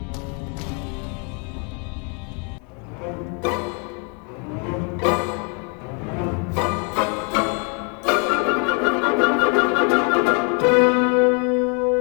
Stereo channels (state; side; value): quieter; right; 36.6 dB